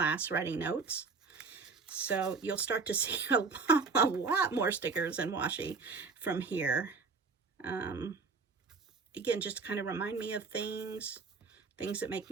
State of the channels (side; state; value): left; quieter; 4.6 dB